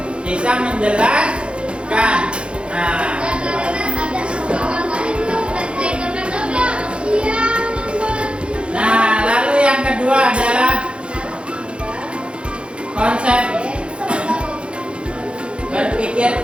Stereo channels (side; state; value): left; late; 0.057 ms